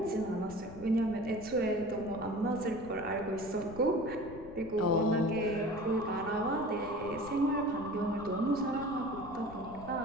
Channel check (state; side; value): noise; left; rumble, 16 dB below the sound